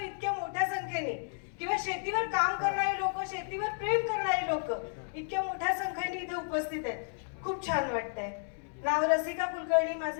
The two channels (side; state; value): right; silent; digital silence